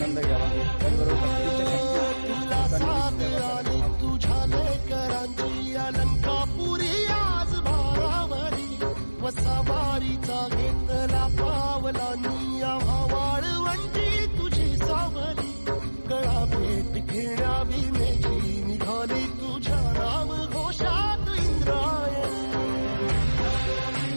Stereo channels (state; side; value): inverted; both; correlation -1.00